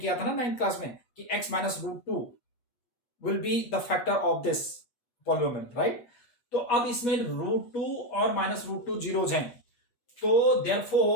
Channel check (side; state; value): right; late; 8.4 ms